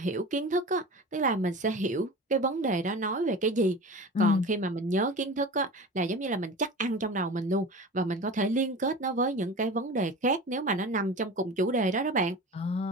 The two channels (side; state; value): both; normal; correlation 0.34